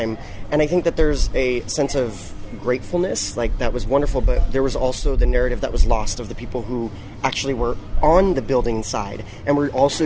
And I think that there's a sense of gratefulness, like, that was wonderful, but there was also the narrative that was lost of the people who actually were on the building side and were also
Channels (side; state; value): both; identical; correlation 1.00